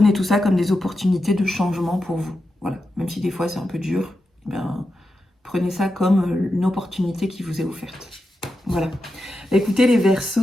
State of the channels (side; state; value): both; normal; correlation 0.89